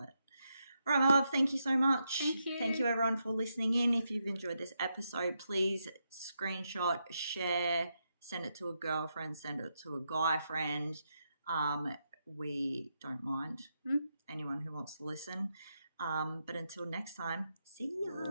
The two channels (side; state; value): both; inverted; correlation -0.83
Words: All right, my love, thank you so much. Thank you. Thank you, everyone, for listening in. If you've enjoyed this episode, please screenshot, share, send it to a girlfriend, send it to a guy friend. We don't mind anyone who wants to listen. But until next time, see ya.